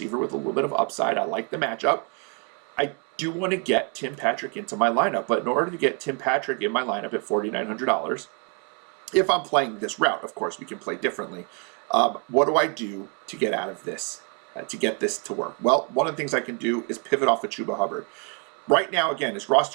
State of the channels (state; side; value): quieter; left; 36.7 dB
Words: with a little bit of upside. I like the matchup. I do want to get Tim Patrick into my lineup, but in order to get Tim Patrick in my lineup at $4,900, if I'm playing this route, of course, we can play differently. What do I do to get out of this, to get this to work? Well, one of the things I can do is pivot off of CHUBA Hubbard. Right now, again, his